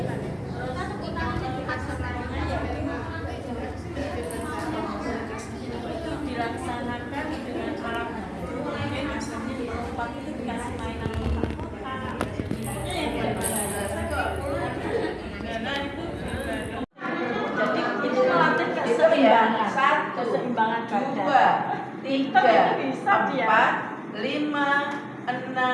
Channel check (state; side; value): identical; both; correlation 1.00